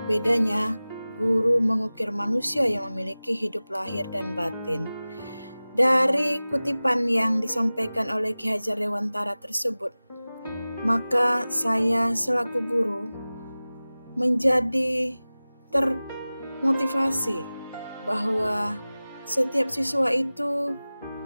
Bedanya, guru mengukir manusia yang memiliki hidup lahir dan batin. Dari kutipan yang disampaikan oleh Ki Hajar Dewantara tersebut, maka saya selaku guru menjadi termotivasi bahwa setiap siswa itu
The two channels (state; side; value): inverted; both; correlation -0.98